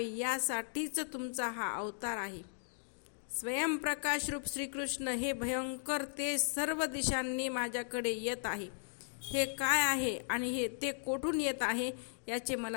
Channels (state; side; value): silent; right; digital silence